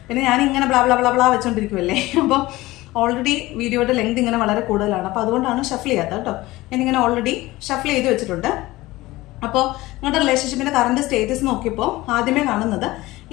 പിന്നെ ഞാനിങ്ങനെ ബ്ലാ ബ്ലാ ബ്ലാ ബ്ലാ വെച്ചോണ്ടിരിക്കുമല്ലേ, അപ്പോൾ ഓൾറെഡി വീഡിയോയുടെ ലെങ്ത് ഇങ്ങനെ വളരെ കൂടുതലാണ്. അപ്പോൾ അതുകൊണ്ടാണ് ഷഫിൾ ചെയ്യാത്തത് കേട്ടോ. ഞാനിങ്ങനെ ഓൾറെഡി ഷഫിൾ ചെയ്ത് വെച്ചിട്ടുണ്ട്. അപ്പോൾ നിങ്ങളുടെ റിലേഷൻഷിപ്പിന്റെ കറണ്ട് സ്റ്റേറ്റസ് നോക്കിയപ്പോൾ ആദ്യമേ കാണുന്നത്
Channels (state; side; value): quieter; right; 18.9 dB